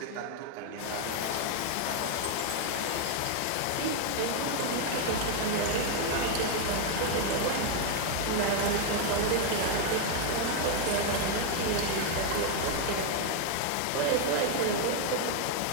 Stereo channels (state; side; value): different; both; correlation 0.01